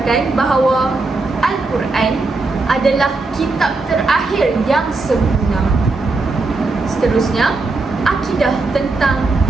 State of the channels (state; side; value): quieter; left; 3.5 dB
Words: bahawa Al-Quran adalah kitab terakhir yang sempurna. Seterusnya, akidah tentang